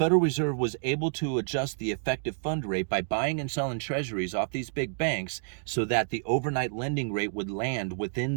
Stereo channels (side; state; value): left; silent; digital silence